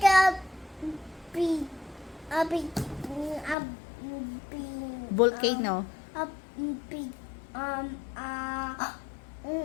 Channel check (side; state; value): right; drops out; at 3.6 s